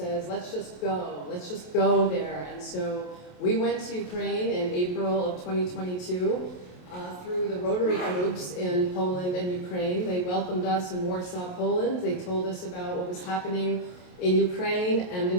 let's just go there. And so we went to Ukraine in April of 2022 through the Rotary groups in Poland and Ukraine. They welcomed us in Warsaw, Poland. They told us about what was happening in Ukraine and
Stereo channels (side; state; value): right; late; 28 ms